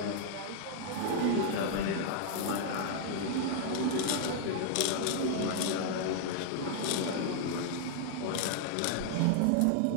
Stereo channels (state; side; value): different; both; correlation -0.01